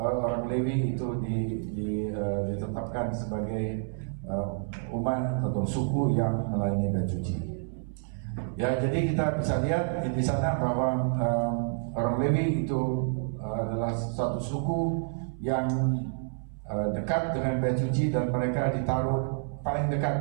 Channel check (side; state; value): left; silent; 59 dB below the other